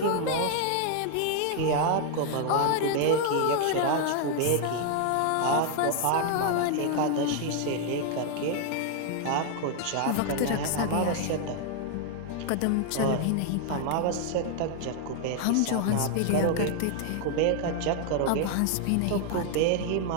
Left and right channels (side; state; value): both; different; correlation 0.00